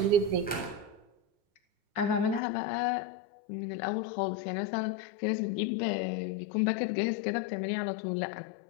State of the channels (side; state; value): right; drops out; at 2.4 s